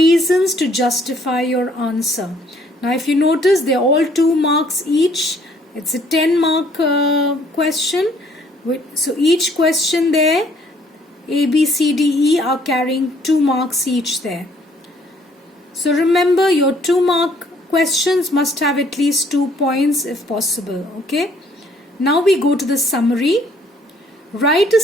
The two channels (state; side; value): normal; both; correlation 0.63